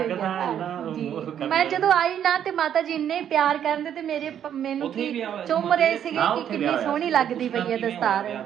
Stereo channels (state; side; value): quieter; left; 9.6 dB